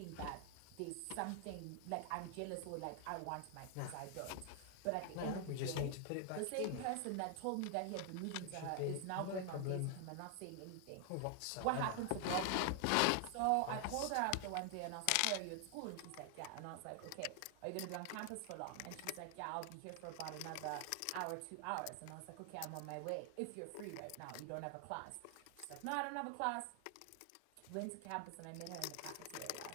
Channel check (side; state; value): both; different; correlation 0.00